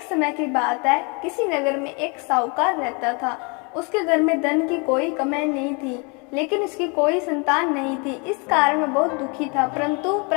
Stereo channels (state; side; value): quieter; right; 32.5 dB